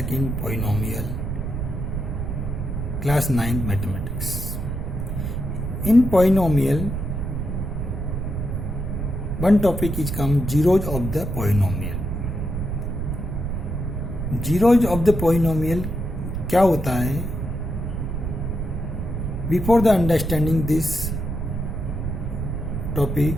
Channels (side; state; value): right; noise; rumble, 3 dB below the sound